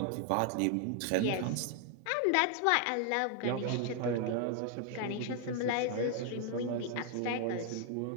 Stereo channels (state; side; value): different; both; correlation 0.00